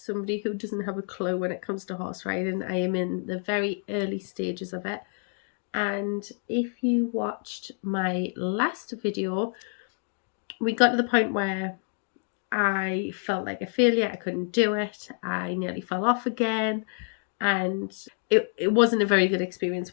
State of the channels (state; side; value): silent; right; 60 dB below the other